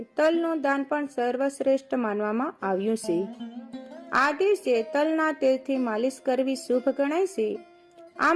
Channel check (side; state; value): both; identical; correlation 1.00